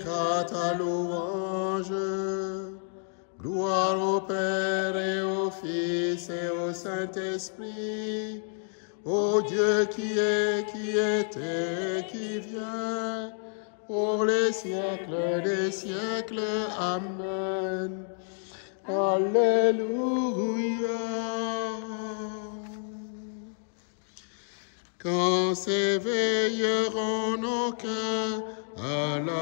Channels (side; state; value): right; silent; digital silence